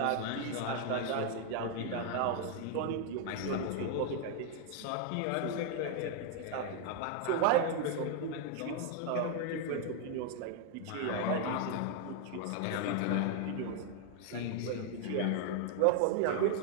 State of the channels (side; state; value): both; different; correlation 0.00